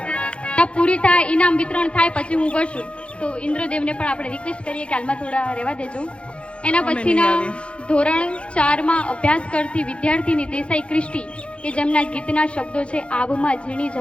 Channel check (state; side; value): late; right; 0.059 ms